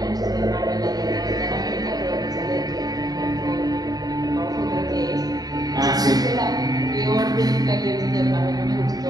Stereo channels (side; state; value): left; late; 0.19 ms